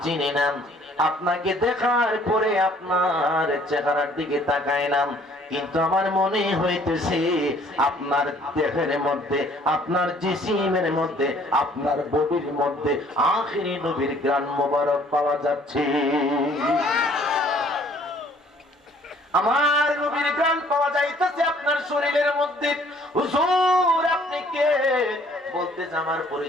চিনি না, আপনাকে দেখার পরে আপনার চেহারার দিকে তাকাইলাম, কিন্তু আমার মনে হইতেছে আপনার দেহের মধ্যে, আপনার জিসিমের মধ্যে, আপনার বডির মধ্যে আখিরি নবীর গ্রান মোবারক পাওয়া যাচ্ছে। আমার নবীর গ্রান পাওয়া যাইতেছে আপনার শরীরের মধ্যে। হুজুর আপনি কে? বলতেছে আমার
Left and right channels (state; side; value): normal; both; correlation 0.58